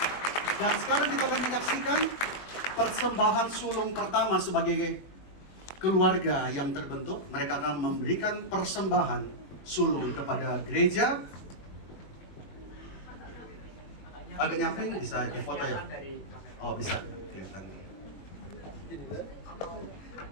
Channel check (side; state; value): right; late; 21 ms